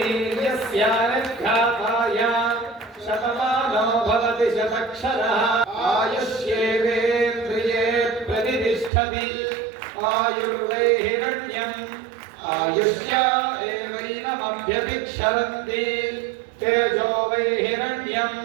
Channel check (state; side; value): drops out; left; at 8.9 s